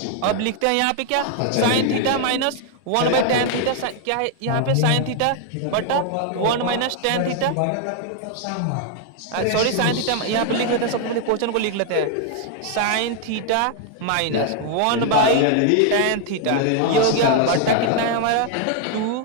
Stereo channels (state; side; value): different; both; correlation 0.00